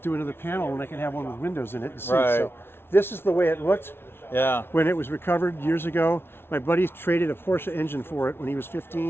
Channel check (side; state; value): right; late; 0.11 ms